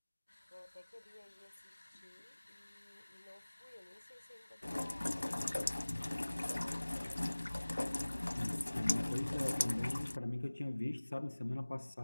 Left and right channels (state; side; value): inverted; both; correlation -1.00